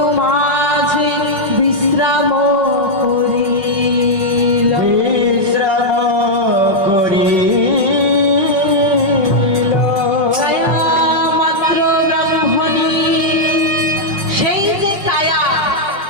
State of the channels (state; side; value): late; left; 5.2 ms